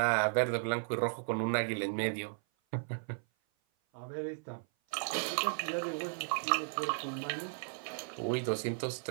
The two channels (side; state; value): left; silent; 54 dB below the other